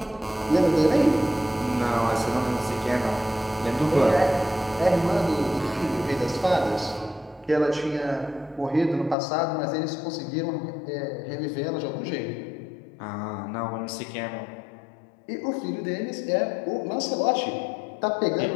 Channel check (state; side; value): drops out; right; at 9.2 s